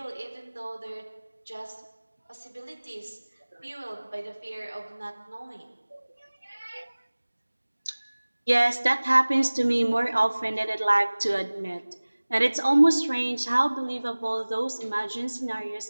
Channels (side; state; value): both; inverted; correlation -1.00